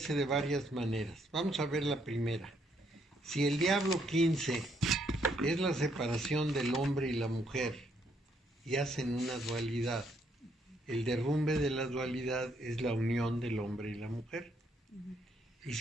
de varias maneras. Vamos a ver la primera. Si el diablo 15 es la separación del hombre y la mujer y hacen una dualidad, el derrumbe de la dualidad es la unión del hombre y la mujer. Y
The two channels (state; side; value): normal; both; correlation 0.72